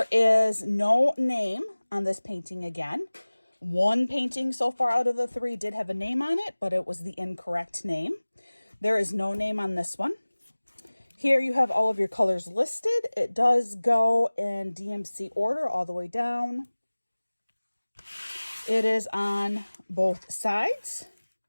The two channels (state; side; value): inverted; both; correlation -1.00